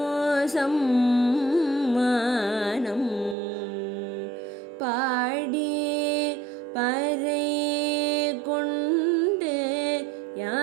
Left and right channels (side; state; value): left; drops out; at 3.4 s